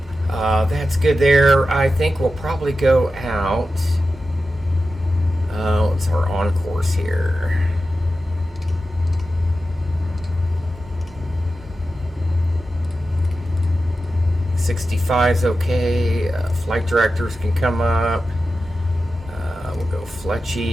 That's good there. I think we'll probably go out. What's our on course here? '65's okay. Flight directors can come up. We'll go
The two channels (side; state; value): both; normal; correlation 0.92